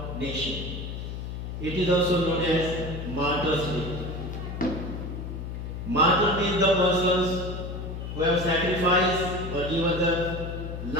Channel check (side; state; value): left; noise; hum, 6 dB below the sound